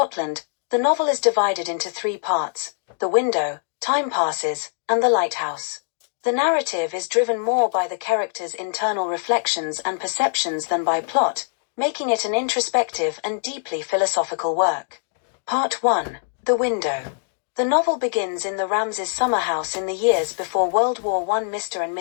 the novel is divided into three parts: the window, time passes, and the lighthouse. The narrative is driven more by the characters' internal reflections and perceptions than by plot, making it an introspective and deeply philosophical work. Part 1. The Window. The novel begins in the Ramsays' summer house in the years before World War I. Mr. and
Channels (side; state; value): right; silent; digital silence